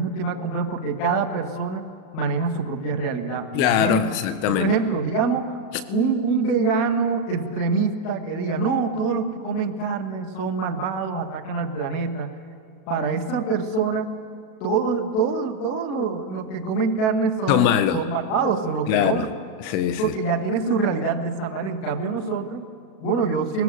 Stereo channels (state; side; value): late; right; 37 ms